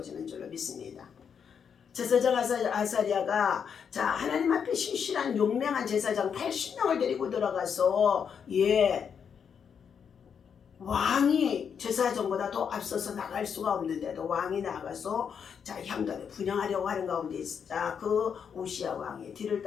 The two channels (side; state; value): right; quieter; 7.2 dB